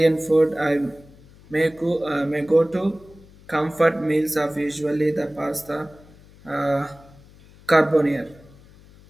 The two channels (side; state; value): left; noise; hum, 24 dB below the sound